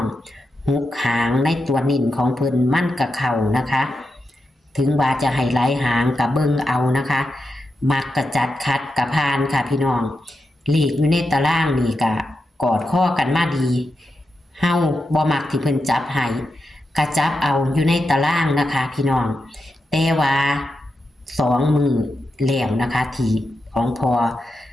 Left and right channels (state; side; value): normal; both; correlation 0.88